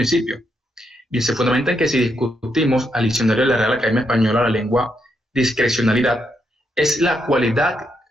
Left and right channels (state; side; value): normal; both; correlation 0.79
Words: Bien, se fundamenta en que si discutimos al diccionario de la Real Academia Española la lengua, discrecionalidad es la cualidad